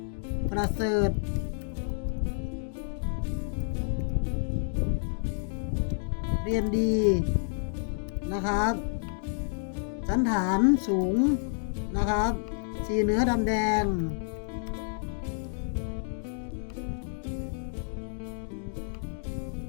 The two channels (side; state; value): right; silent; digital silence